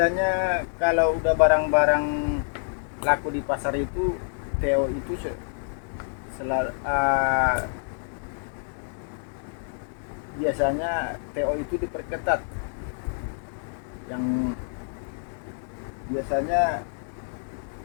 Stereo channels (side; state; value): right; silent; digital silence